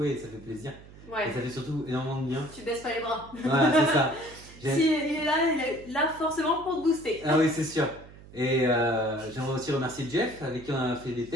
et ça fait plaisir. Ouais. Et ça fait surtout énormément de bien. Tu baisses pas les bras. Voilà, c'est ça. Si il est là forcément pour te booster. Ah oui, c'est sûr. Et j'aimerais aussi remercier Jeff, avec qui on a fait des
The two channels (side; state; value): right; noise; hum, 20 dB below the sound